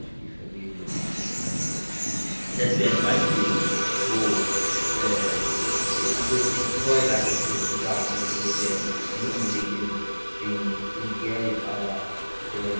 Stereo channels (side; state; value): both; inverted; correlation -1.00